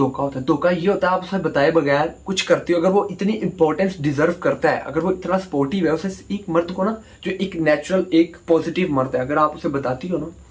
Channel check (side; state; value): both; identical; correlation 1.00